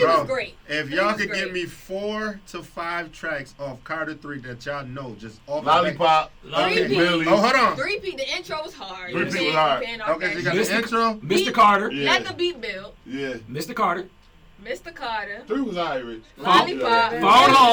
was great. If Three y'all was could great. give me 4 to 5 tracks off Carter 3 that y'all know, just off Lollipop, Okay. Millie. Oh, hold on. 3P, the intro was hard. 3P You was hard. can't off Okay, so that you got shit. the intro. Mr. Carter. Yeah. Let the beat build. Yeah. Mr. Carter. Mr. Carter. 3 was Irish. Lollipop. Phone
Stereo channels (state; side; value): identical; both; correlation 1.00